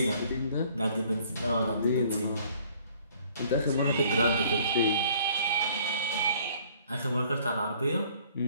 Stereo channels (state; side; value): inverted; both; correlation -0.57